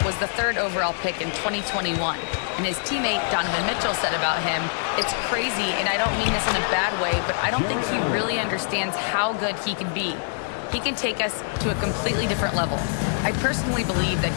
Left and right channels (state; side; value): silent; right; digital silence